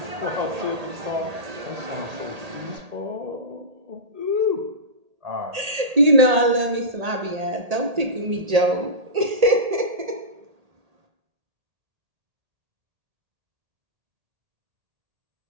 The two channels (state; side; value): late; left; 1.8 ms